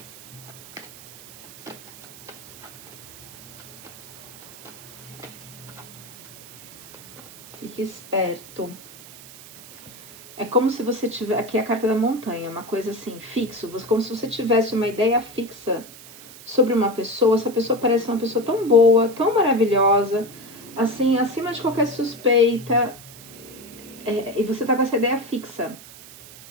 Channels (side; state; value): right; noise; hiss, 18 dB below the sound